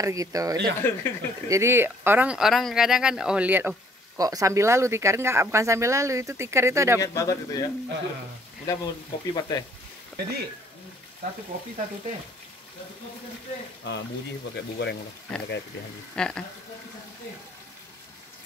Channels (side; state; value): both; normal; correlation 0.62